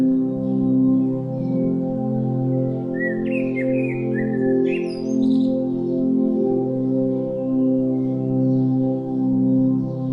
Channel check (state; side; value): identical; both; correlation 1.00